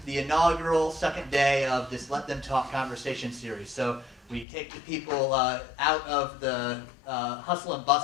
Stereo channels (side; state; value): right; drops out; at 4.5 s